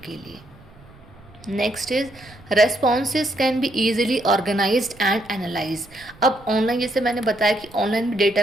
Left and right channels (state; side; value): noise; right; rumble, 24 dB below the sound